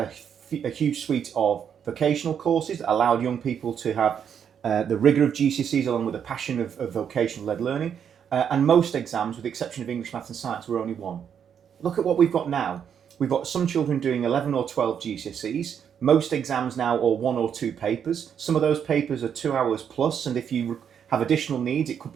a huge suite of vocational courses that allowed young people to have the rigour of GCSEs along with the passion of vocational-led learning. And most exams, with the exception of English, Maths and Science, were only one. Look at what we've got now. We've got some children doing 11 or 12 GCSEs. Most exams now are 1 or 2 papers. Some of those papers are 2 hours plus, and if you have additional needs, it could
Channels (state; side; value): quieter; left; 8.0 dB